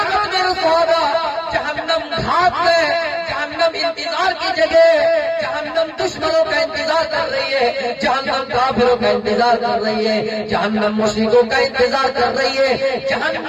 مِرْصَادًا، جہنم گھات ہے، جہنم انتظار کی جگہ، جہنم دشمنوں کا انتظار کر رہی ہے، جہنم کافروں کا انتظار کر رہی ہے، جہنم مشرکوں کا انتظار کر رہی ہے،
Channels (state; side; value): identical; both; correlation 1.00